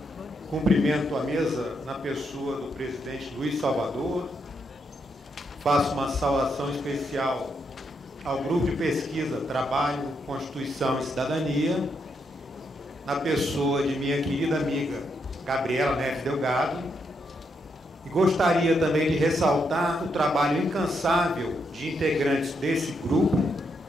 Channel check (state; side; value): normal; both; correlation 0.79